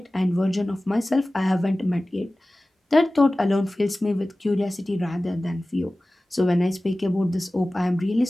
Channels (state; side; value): normal; both; correlation 0.97